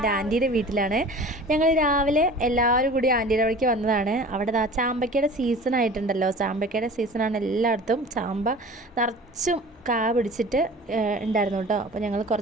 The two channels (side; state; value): both; normal; correlation 0.41